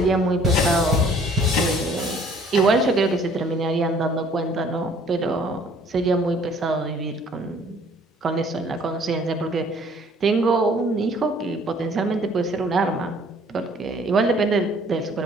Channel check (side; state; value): both; normal; correlation 0.57